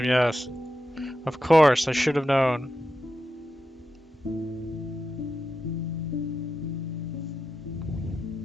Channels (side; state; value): both; normal; correlation 0.89